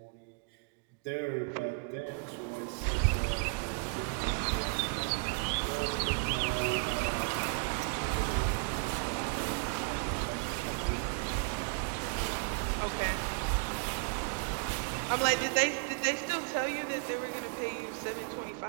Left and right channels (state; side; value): quieter; left; 38.1 dB